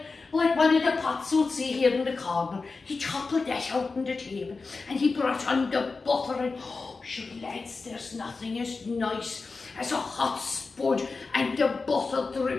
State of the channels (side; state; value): right; quieter; 4.1 dB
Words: one of the pots you'll see here in the corner. He toppled that out on the table, and he brought on the butter, and oh, sure lads, there's nothing as nice as a hot spud and the butter